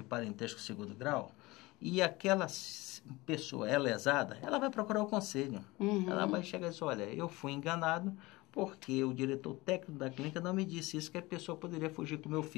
parentesco segundo grau, e aquela pessoa é lesada, ela vai procurar o conselho. Ela vai chegar e dizer, olha, eu fui enganado porque o diretor técnico da clínica não me disse isso, que a pessoa poderia fugir com o meu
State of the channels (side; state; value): right; quieter; 21.5 dB